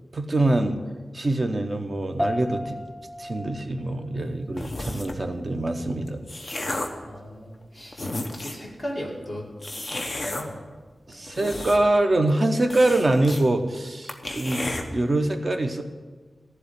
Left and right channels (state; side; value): normal; both; correlation 0.95